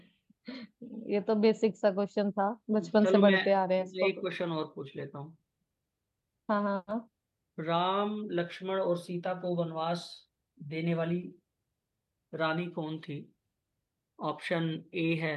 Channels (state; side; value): identical; both; correlation 1.00